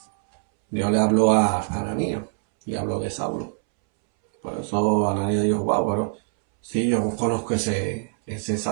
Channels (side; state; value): left; silent; 63 dB below the other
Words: le habló a Ananías y habló de Saulo. Por eso Ananías dijo, wow, pero sí, yo conozco ese